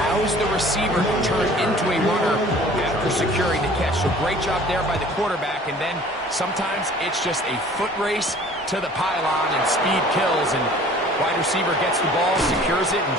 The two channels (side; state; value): both; normal; correlation 0.49